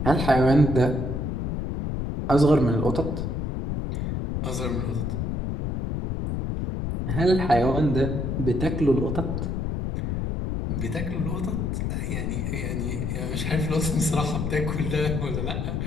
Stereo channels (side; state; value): left; noise; rumble, 1 dB below the sound